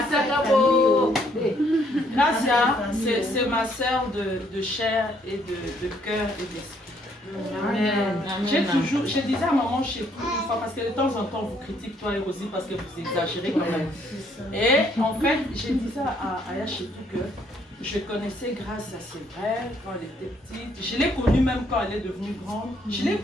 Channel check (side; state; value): both; normal; correlation 0.68